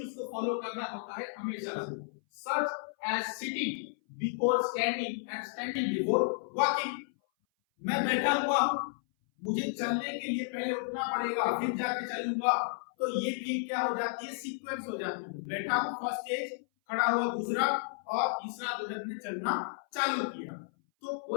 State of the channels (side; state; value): right; silent; 56 dB below the other